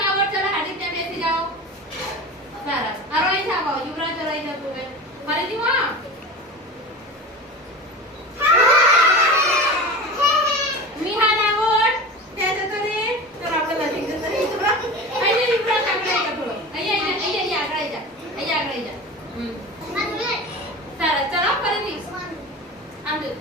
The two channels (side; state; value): both; normal; correlation 0.32